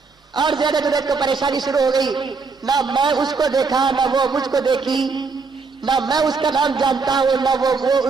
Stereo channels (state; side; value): quieter; left; 4.6 dB